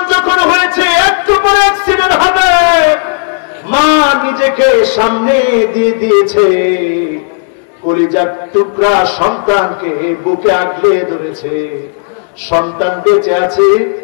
যখন হয়েছে একটু পরে অ্যাক্সিডেন্ট হবে, মা নিজেকে সামনে দিয়ে দিয়েছে, কলিজার টুকরা সন্তানকে বুকে আগলে ধরেছে, সন্তান বেঁচে আছে,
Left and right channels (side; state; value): right; silent; digital silence